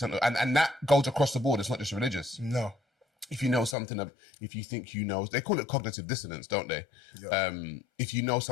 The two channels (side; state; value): right; drops out; at 3.8 s